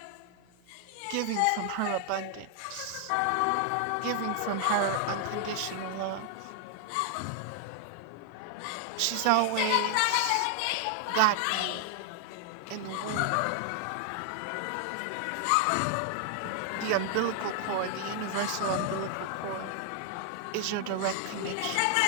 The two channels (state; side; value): different; both; correlation 0.00